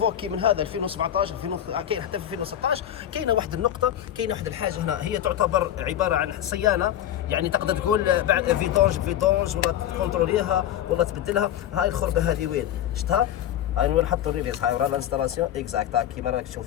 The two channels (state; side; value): quieter; right; 11.2 dB